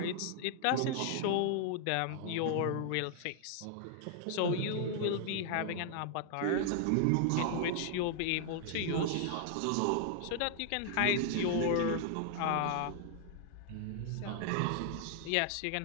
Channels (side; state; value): both; different; correlation 0.00